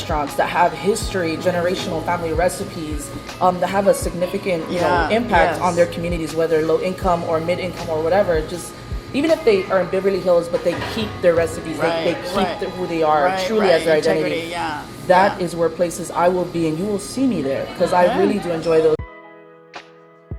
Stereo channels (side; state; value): both; identical; correlation 1.00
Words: that have history, generational family recipes, that have a significant, impact yes. on their communities, whether low income or mid income or whatever. Just even if they are in Beverly Hills, but they keep their recipes, they keep who they are truly as their identity. Integrity, yeah. That is where places I will be, and you will see me there, because I really do enjoy those.